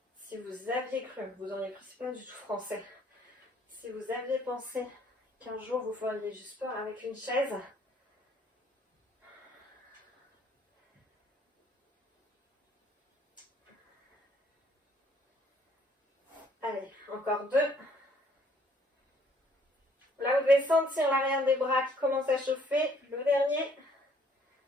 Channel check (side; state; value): both; normal; correlation 0.63